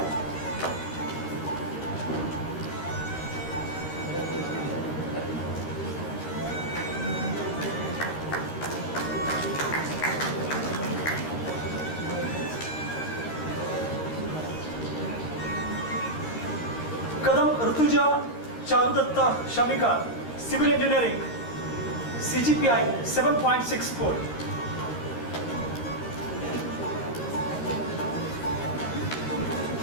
Kadam Rutuja Charudatta Shamika, Civil Engineering, CGPI 7.64.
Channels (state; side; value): late; right; 13 ms